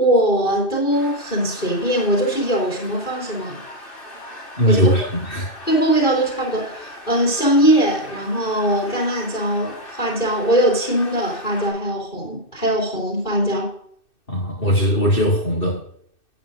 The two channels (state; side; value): late; right; 2.6 ms